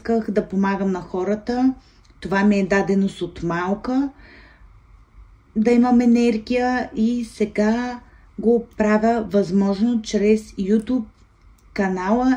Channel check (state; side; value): identical; both; correlation 1.00